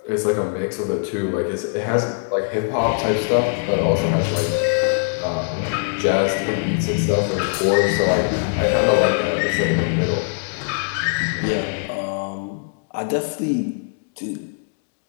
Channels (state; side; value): silent; right; digital silence